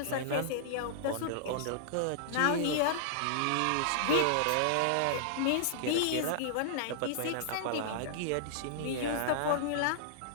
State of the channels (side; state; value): both; different; correlation -0.01